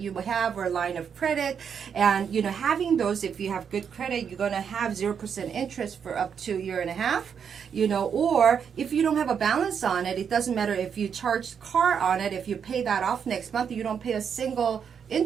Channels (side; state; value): left; quieter; 7.3 dB